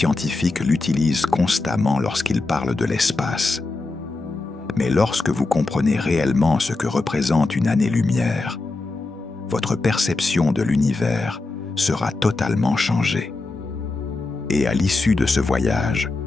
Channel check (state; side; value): quieter; right; 3.3 dB